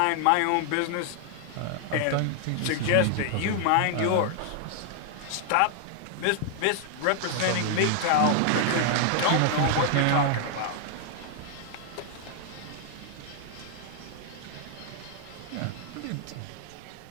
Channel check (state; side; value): different; both; correlation 0.00